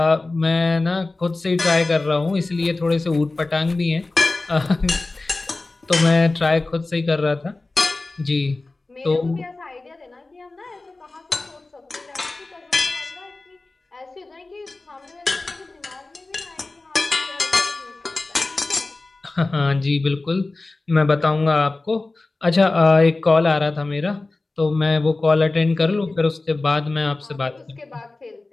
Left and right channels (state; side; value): quieter; right; 3.2 dB